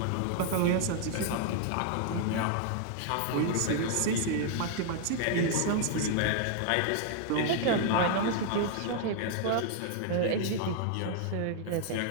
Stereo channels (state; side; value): different; both; correlation 0.00